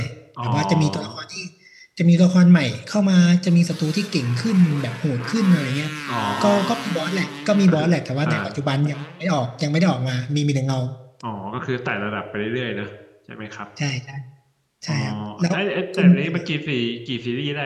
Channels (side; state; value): both; identical; correlation 1.00